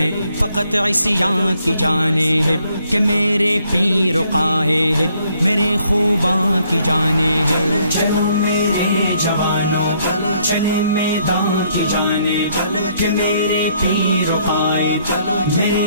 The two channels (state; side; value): inverted; both; correlation -0.68